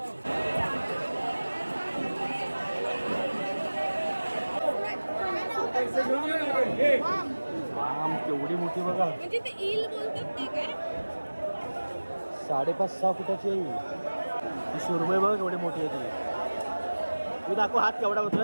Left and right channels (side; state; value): both; inverted; correlation -1.00